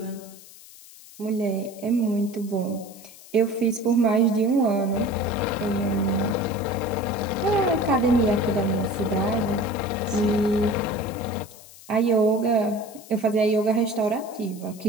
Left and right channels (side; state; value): left; noise; hiss, 20 dB below the sound